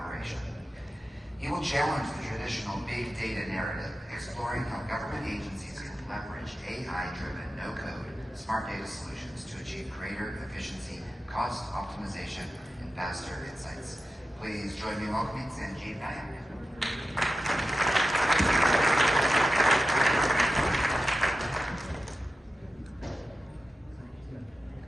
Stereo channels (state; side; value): normal; both; correlation 0.91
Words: He will challenge the traditional big data narrative, exploring how government agencies can leverage AI-driven no-code smart data solutions to achieve greater efficiency, cost optimization, and faster insights. Please join me in welcoming Sanjib Nayak.